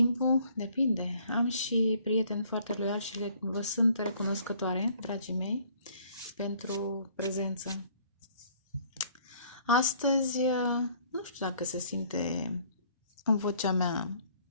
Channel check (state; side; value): inverted; both; correlation -0.59